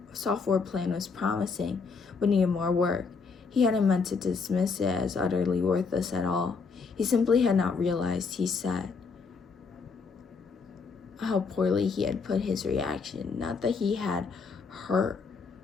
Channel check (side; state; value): right; quieter; 5.0 dB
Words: plan was promising, but needed more work. He hadn't meant to dismiss it as utterly worthless at all. He simply had not realized, he said, how poorly he had put his reaction. Not that he had hurt